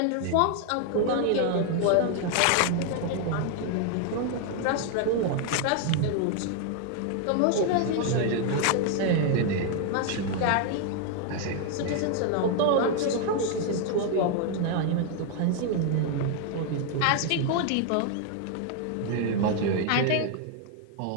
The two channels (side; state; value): both; different; correlation 0.00